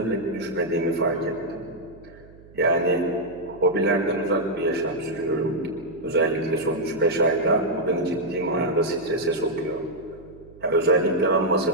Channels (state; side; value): noise; right; hum, 23 dB below the sound